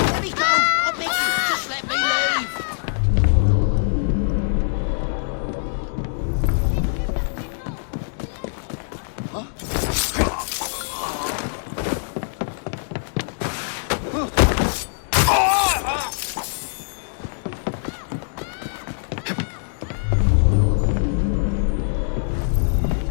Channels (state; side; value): silent; right; digital silence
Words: me go! I beg you, just let me leave!